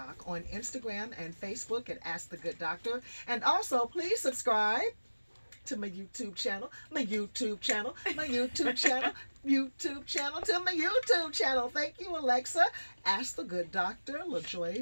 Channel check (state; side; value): inverted; both; correlation -1.00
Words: on Instagram and Facebook at Ask the Good Doctor. And also, please subscribe to my YouTube channel, to my YouTube channel. Thank you, Alexa. Ask the Good Doctor,